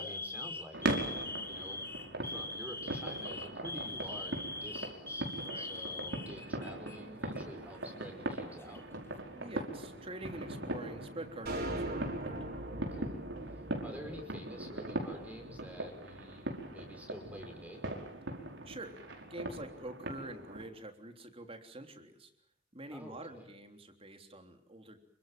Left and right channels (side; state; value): both; normal; correlation 0.11